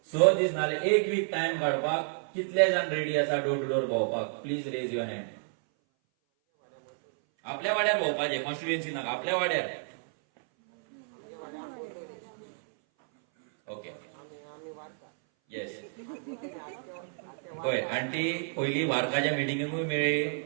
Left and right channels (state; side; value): silent; left; 58 dB below the other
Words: 6 दीस नाल्यार एक वीक टाइम काडपाक कितले जाण रेडी आसा डोर टू डोर भोंवपाक प्लीज रेज युअर हँड आपल्या वाड्यार भोंवपाचें कॉन्स्टिट्युएन्सी नाका आपल्या वाड्यार ओके येस पळय आंटी पयली वार्काच्या मिटिंगेकूय मेळ्ळी